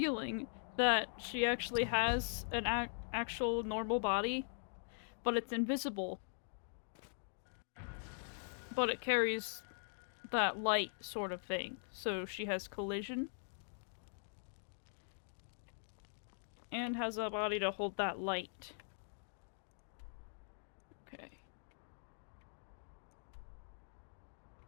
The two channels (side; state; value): right; silent; digital silence